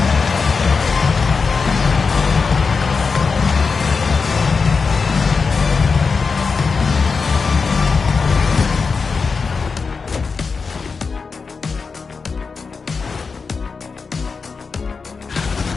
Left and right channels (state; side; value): quieter; right; 4.9 dB